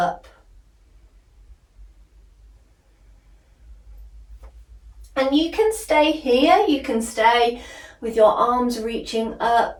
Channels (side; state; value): both; identical; correlation 1.00